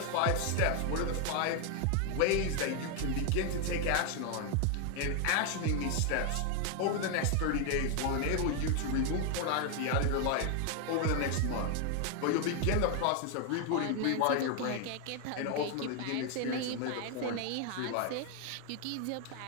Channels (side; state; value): both; different; correlation 0.01